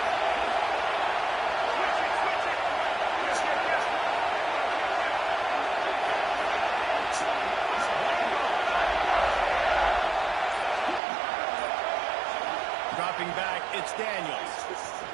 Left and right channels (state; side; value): drops out; left; at 11.0 s